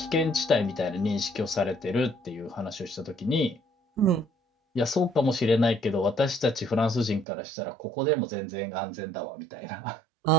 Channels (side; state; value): left; drops out; at 7.2 s